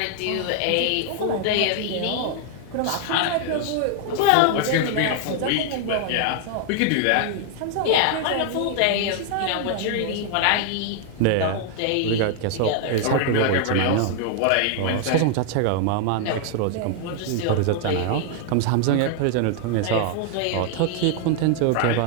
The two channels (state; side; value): different; both; correlation 0.00